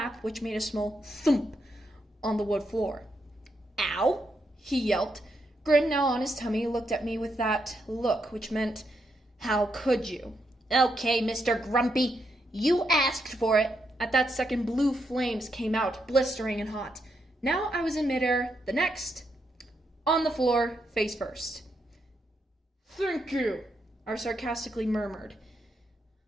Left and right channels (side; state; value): both; normal; correlation 0.80